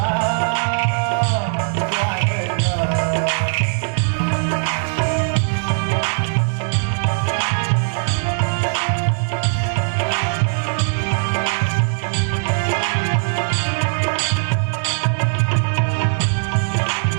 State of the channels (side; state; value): left; silent; 62 dB below the other